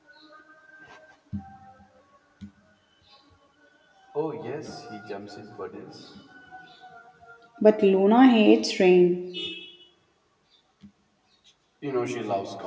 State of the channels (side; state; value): both; identical; correlation 1.00